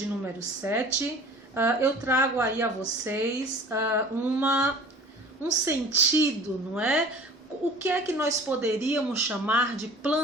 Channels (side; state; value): both; normal; correlation 0.44